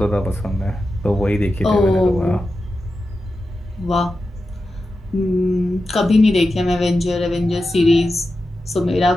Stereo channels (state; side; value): normal; both; correlation 0.91